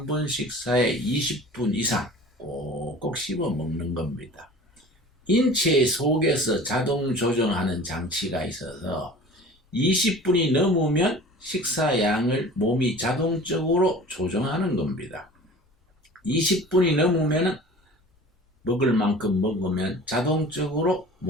번 식사에 20분 이상 꼭꼭 씹어 먹는 겁니다. 인체 속에서 자동 조정하는 장치가 있어서 20분이 넘으면 식사 양을 몸이 자동적으로 조정하는 겁니다. 20분이 넘으면 먹을 만큼 먹으면 자동적으로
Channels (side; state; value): both; normal; correlation 0.41